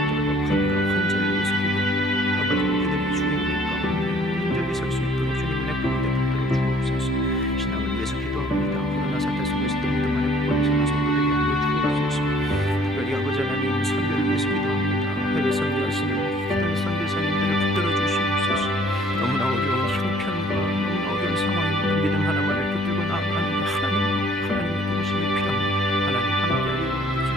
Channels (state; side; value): normal; both; correlation 0.58